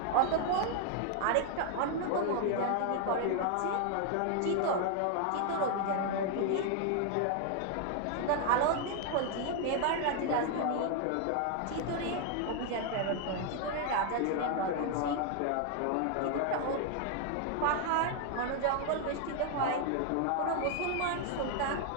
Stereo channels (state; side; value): different; both; correlation 0.00